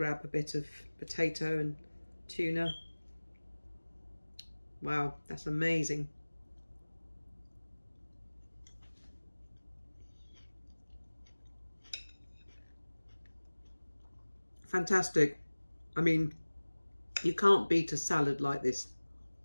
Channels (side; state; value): both; inverted; correlation -1.00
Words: a bit of potato and tuna. Wow, that's amazing. Fantastic. I mean, you can't beat a salad like this.